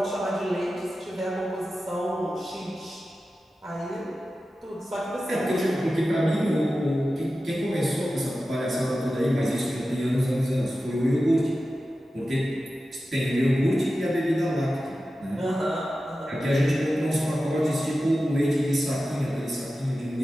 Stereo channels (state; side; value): normal; both; correlation 0.93